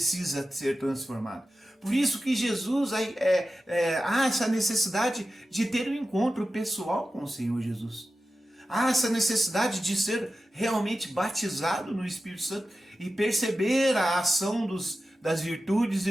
ser transformado. Por isso que Jesus há essa necessidade de ter um encontro pessoal com o Senhor Jesus. Há essa necessidade de ser realmente batizado no Espírito Santo e perceber a ação das virtudes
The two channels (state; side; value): normal; both; correlation 0.93